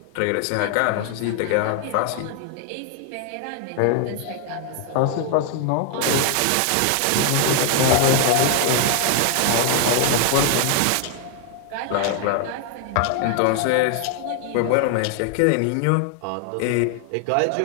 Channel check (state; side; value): different; both; correlation 0.00